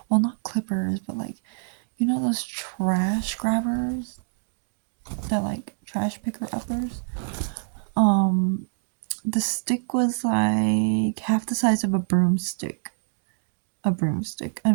Well, not clippers, but like, you know, those trash grabbers? That like trash picker uppers? The stick was like half the size of a broomstick. A broomstick. I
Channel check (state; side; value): silent; left; digital silence